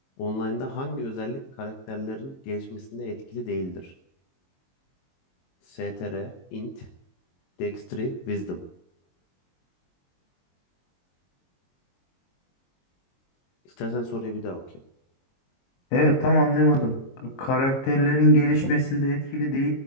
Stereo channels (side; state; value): right; late; 22 ms